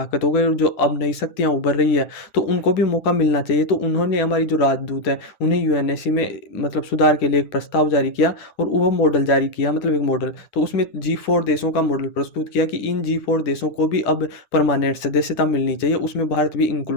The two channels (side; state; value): right; late; 10 ms